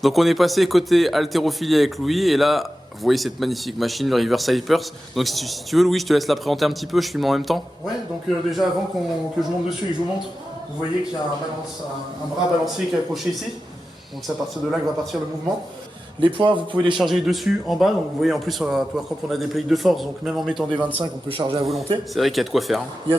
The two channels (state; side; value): normal; both; correlation 0.93